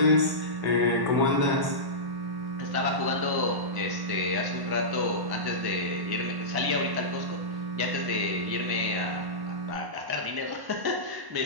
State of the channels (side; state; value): left; late; 1.1 ms